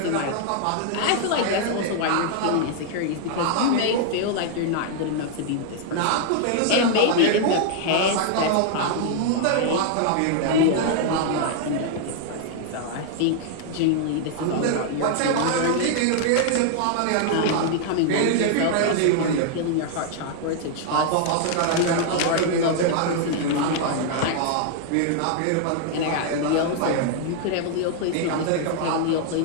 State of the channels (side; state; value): both; different; correlation 0.00